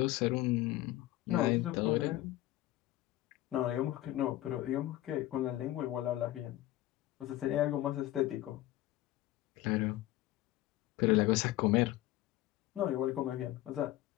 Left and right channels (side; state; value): right; quieter; 15.7 dB